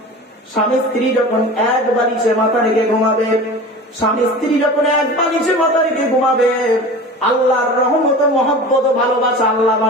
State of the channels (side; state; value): both; normal; correlation 0.36